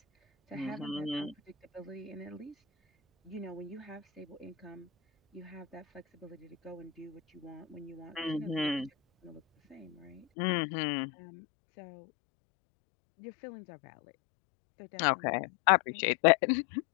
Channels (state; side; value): drops out; right; at 10.2 s